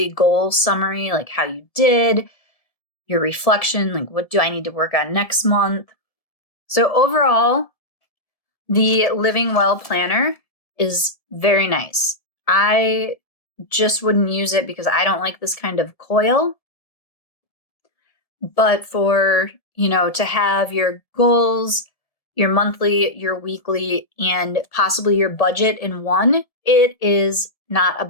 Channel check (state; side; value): late; right; 1.7 ms